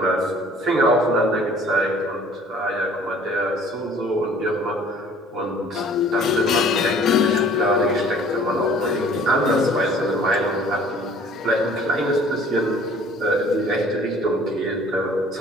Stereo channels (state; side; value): normal; both; correlation 0.53